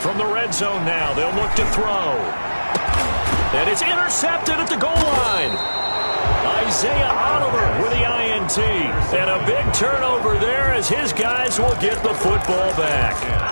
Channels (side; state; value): both; inverted; correlation -1.00